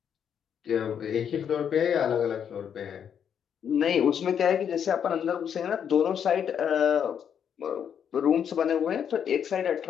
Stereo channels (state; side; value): quieter; right; 8.2 dB